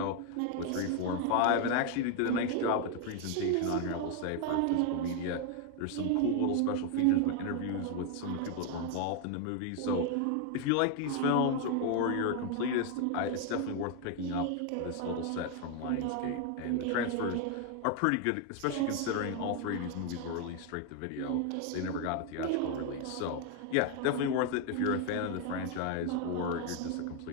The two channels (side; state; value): both; different; correlation 0.01